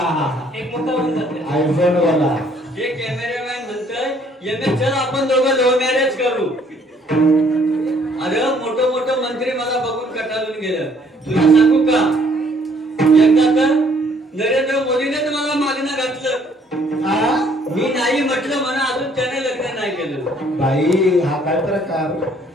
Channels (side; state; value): both; normal; correlation 0.63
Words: हे कॅमेरामॅन म्हणतोय चल आपण दोघं लव्ह मॅरेज करू. अरे मोठं मोठं मंत्री मला बघून कटाळून गेलं. तुला सांगू का, एकदा तर नरेंद्र मोदीने मला मागणं घातलं. मी नाही म्हटलं म्हणा, अजून त्याने लग्न नाही केलं. बाई हा काय प्रकार?